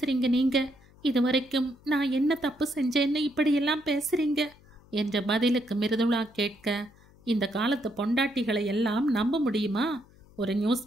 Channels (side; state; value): left; noise; hum, 27 dB below the sound